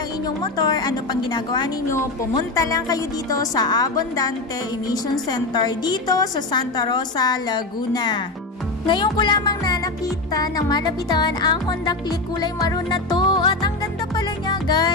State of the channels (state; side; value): quieter; right; 3.1 dB